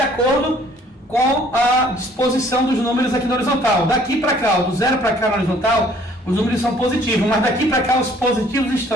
acordo com a disposição dos números aqui na horizontal. Daqui para cá, do 0 para cá na horizontal, os números são positivos, mas daqui para cá os positivos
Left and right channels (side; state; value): both; normal; correlation 0.58